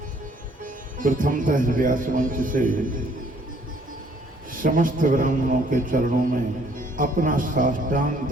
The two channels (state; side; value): normal; both; correlation 0.62